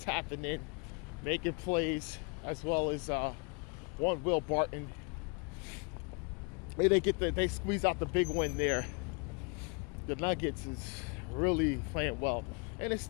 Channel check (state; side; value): quieter; right; 33.7 dB